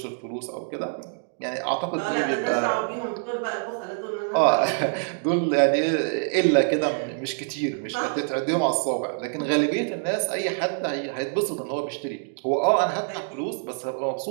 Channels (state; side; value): silent; left; digital silence